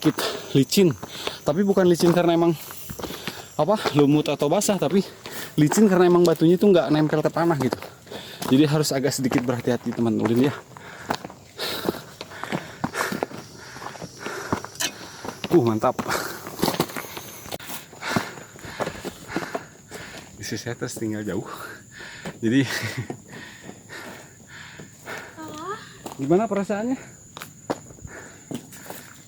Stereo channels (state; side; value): identical; both; correlation 1.00